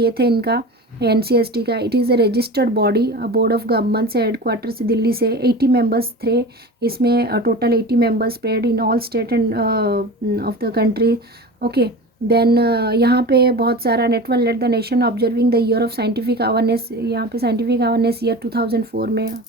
थे इनका, NCST का। It is a registered body, board of government से, हेडक्वार्टर से दिल्ली से। 80 मेंबर्स थे इसमें, total 80 members spread in all state and of the country. Okay, then यहाँ पे बहुत सारा network let the nation observing the year of scientific awareness. यहाँ पे साइंटिफिक अवेयरनेस ईयर 2004 में,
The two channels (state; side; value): normal; both; correlation 0.33